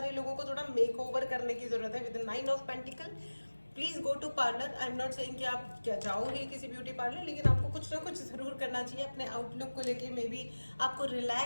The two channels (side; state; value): both; inverted; correlation -1.00